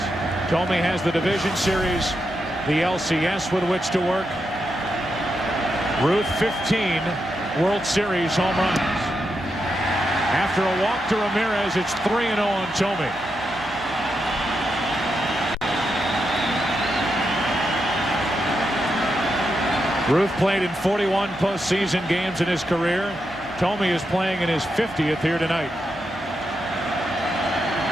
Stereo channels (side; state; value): both; normal; correlation 0.85